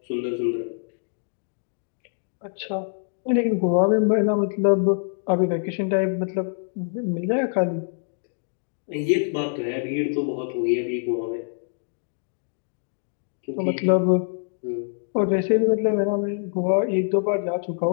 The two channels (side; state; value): right; silent; digital silence